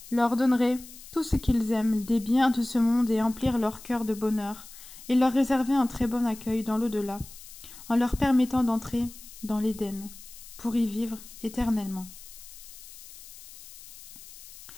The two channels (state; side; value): noise; left; hiss, 17 dB below the sound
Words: leur donnerait tout ce qu'ils aiment, des biens de ce monde et emplir leur cœur de bonheur, et leur réserver un très bon accueil dans l'au-delà, en leur permettant d'entrer dans l'Éden, pour y vivre éternellement.